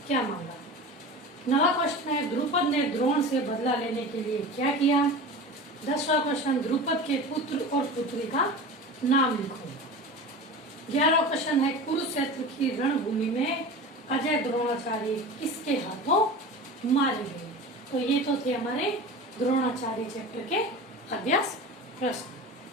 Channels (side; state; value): both; normal; correlation 0.33